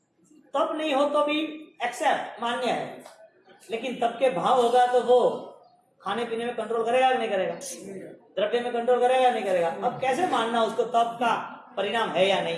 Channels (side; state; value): both; identical; correlation 1.00